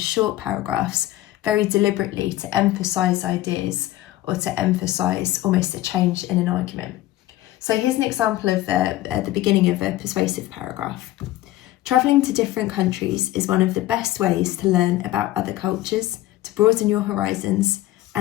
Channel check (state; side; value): quieter; right; 15.7 dB